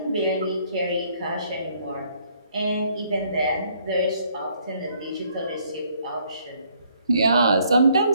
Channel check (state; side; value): inverted; both; correlation -0.66